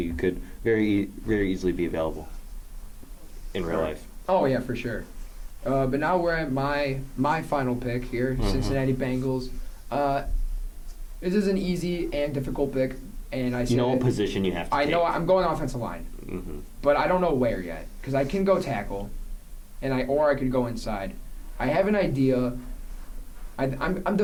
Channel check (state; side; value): identical; both; correlation 1.00